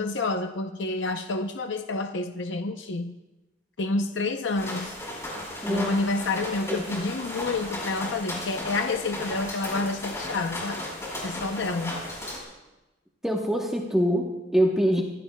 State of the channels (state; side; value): normal; both; correlation 0.46